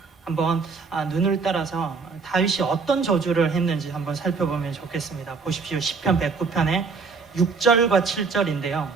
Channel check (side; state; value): left; quieter; 4.8 dB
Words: 한번 눈을 따라서 다윗이 어떤 저주를 했는지 한번 살펴보면 좋겠습니다. 보십시오. 시편 109편의 6절과 7절인데요.